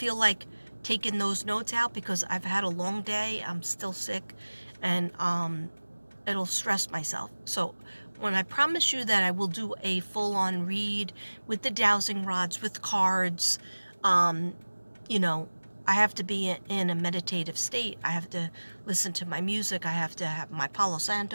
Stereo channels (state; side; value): inverted; both; correlation -1.00